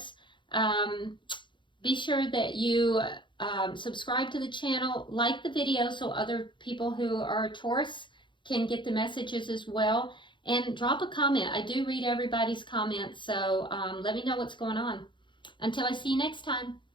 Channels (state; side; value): late; right; 0.23 ms